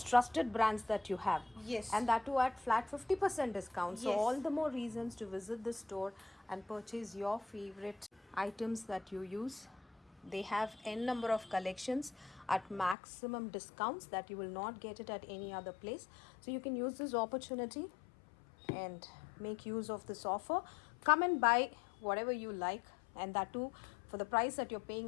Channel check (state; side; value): drops out; right; at 13.0 s